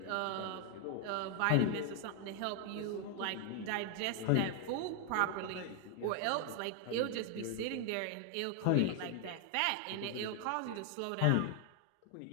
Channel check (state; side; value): different; both; correlation 0.00